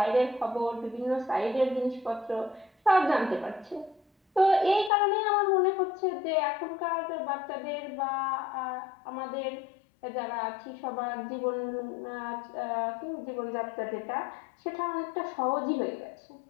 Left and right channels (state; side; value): drops out; right; at 4.9 s